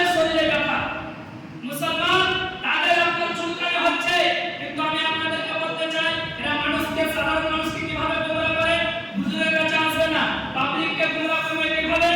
শরীরে ব্যথা, মুসলমান তাদের আপনার চুলকানি হচ্ছে, কিন্তু আমি আপনাদেরকে বলতে চাই এরা মানুষকে সাধারণ মানুষকে কিভাবে গোমরাহ করে, হুজুরের কাছে আসবে না, পাবলিককে গোমরাহ করবে কিভাবে?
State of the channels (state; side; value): identical; both; correlation 1.00